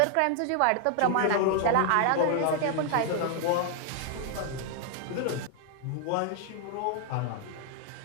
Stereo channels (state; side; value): different; both; correlation 0.00